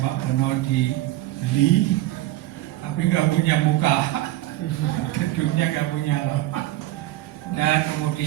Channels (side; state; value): left; quieter; 15.7 dB